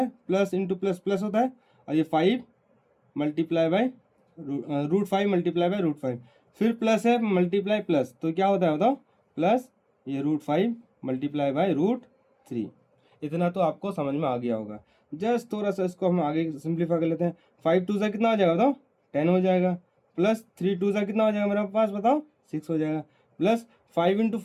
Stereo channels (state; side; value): identical; both; correlation 1.00